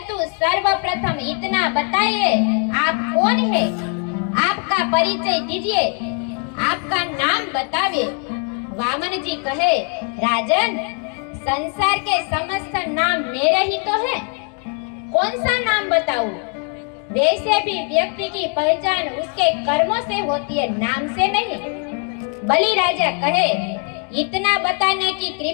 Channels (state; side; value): quieter; right; 39.3 dB